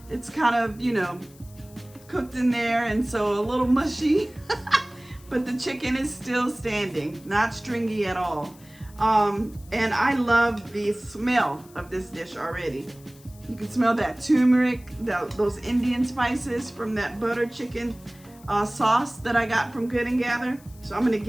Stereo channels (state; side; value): noise; left; hiss, 25 dB below the sound